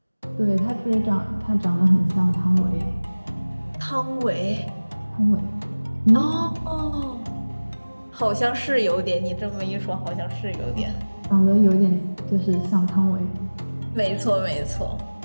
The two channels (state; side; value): inverted; both; correlation -1.00